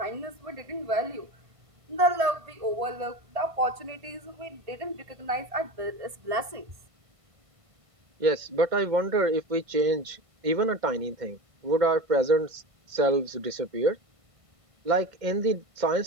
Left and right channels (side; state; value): left; late; 1.5 ms